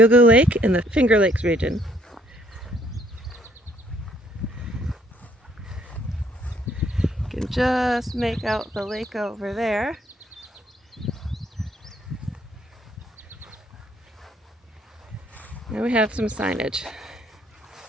Lake in the Finger Lakes region. You can just make out the lake over there. And we have some signage.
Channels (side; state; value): both; normal; correlation 0.65